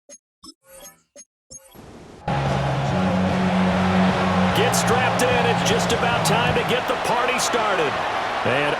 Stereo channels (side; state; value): both; identical; correlation 1.00